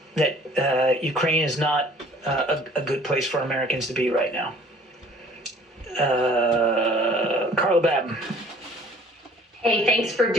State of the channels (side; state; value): both; normal; correlation 0.53